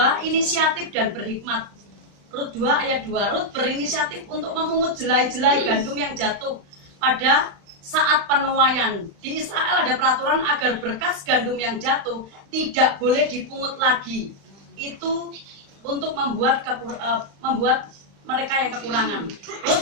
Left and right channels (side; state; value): left; late; 35 ms